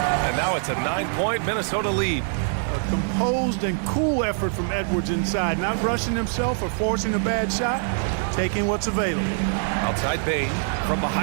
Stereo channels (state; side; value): silent; left; digital silence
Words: And now it's a 9-point Minnesota lead. A composed and cool effort from Edwards inside. Not rushing himself or forcing a bad shot. Taking what's available. Outside Bain from